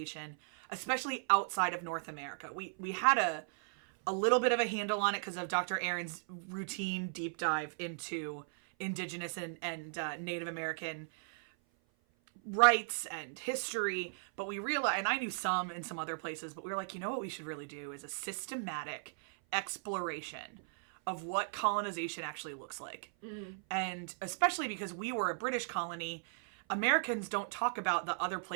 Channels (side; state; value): left; silent; 53 dB below the other